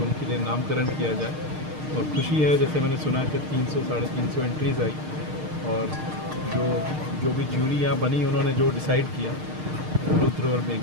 उनके लिए नामकरण किया जाए। और खुशी है, जैसे मैंने सुना कि 300-350 एंट्रीज़ आई, और जो भी ज्यूरी यहाँ बनी उन्होंने जो डिसाइड किया रुद्र और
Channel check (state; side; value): late; left; 6.5 ms